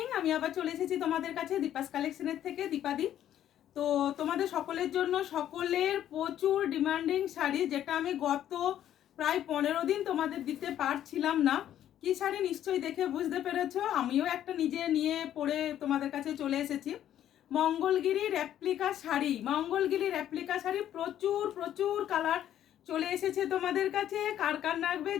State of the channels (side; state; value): right; quieter; 11.2 dB